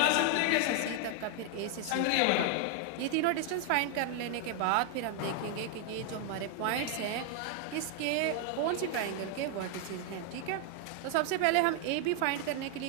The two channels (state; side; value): different; both; correlation 0.00